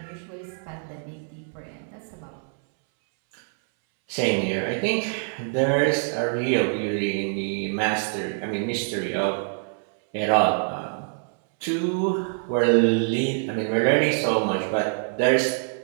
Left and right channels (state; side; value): silent; left; 62 dB below the other